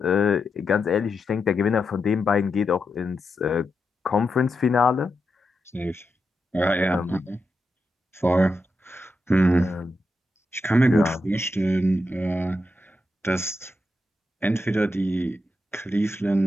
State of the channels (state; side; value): normal; both; correlation 0.86